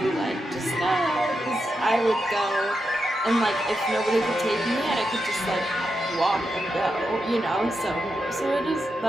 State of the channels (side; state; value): both; normal; correlation 0.86